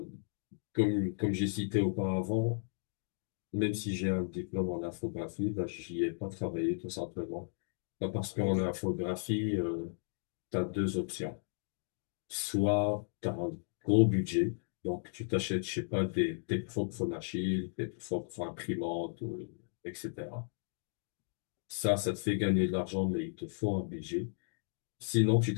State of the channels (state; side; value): silent; right; digital silence